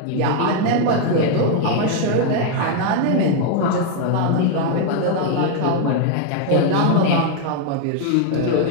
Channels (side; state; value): both; different; correlation 0.00